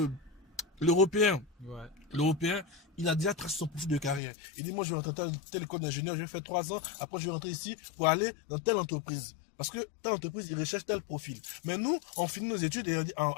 l'Européen, il a déjà tracé son profil de carrière. Il dit, moi, je vais rentrer dans telle école d'ingénieur, je vais faire 3 ans, après je vais rentrer ici pour aller dans telle entreprise. Parce que telle entreprise, il recherche tel profil. Mais nous, on finit nos études et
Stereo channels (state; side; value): drops out; right; at 4.2 s